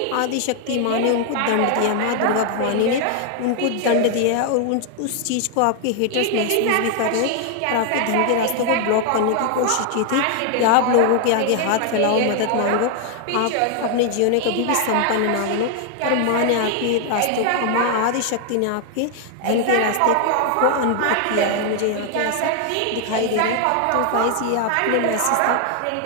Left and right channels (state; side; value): different; both; correlation 0.00